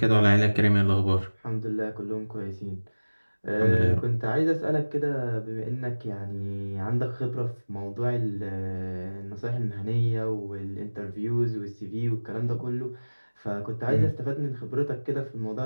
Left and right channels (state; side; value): inverted; both; correlation -1.00